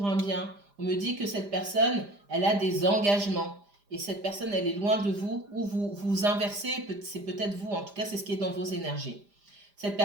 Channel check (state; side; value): late; left; 5.0 ms